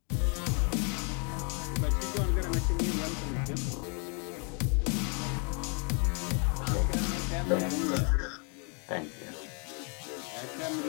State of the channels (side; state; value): right; quieter; 37.5 dB